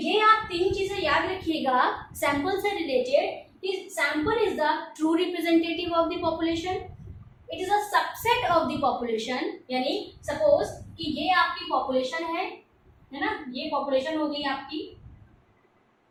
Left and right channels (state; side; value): identical; both; correlation 1.00